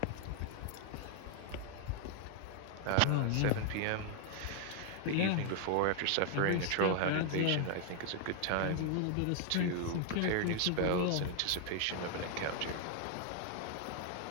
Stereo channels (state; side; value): different; both; correlation 0.00